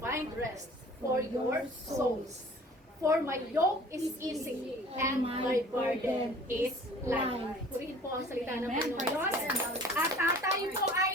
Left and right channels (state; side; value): normal; both; correlation 0.48